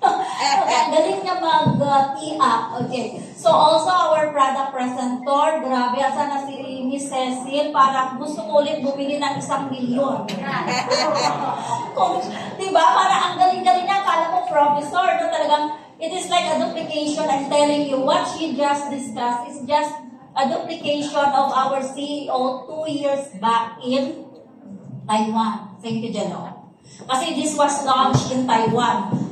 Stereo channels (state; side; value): identical; both; correlation 1.00